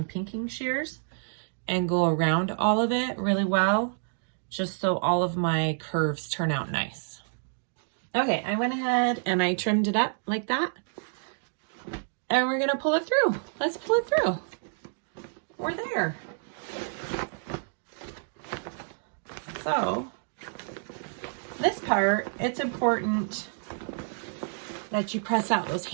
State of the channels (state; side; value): silent; left; digital silence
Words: pinking shears and go around all of it really well, just so all of my curves turn out nice. Okay, I went ahead and I trimmed it up like that. And we're gonna pull it through. Let's pull it through. We're there. So, this part, it's important that you press out those